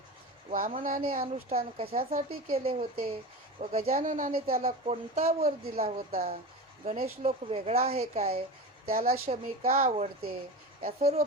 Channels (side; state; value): both; normal; correlation 0.27